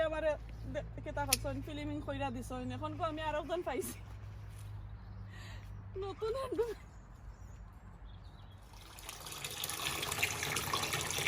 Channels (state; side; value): identical; both; correlation 1.00